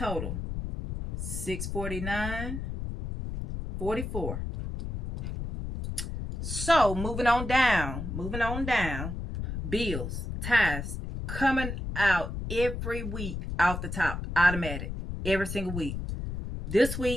$649.44. So moving on down. Bills, tithes coming out every week off the top, automatic, every single week. This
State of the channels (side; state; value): left; noise; rumble, 5 dB below the sound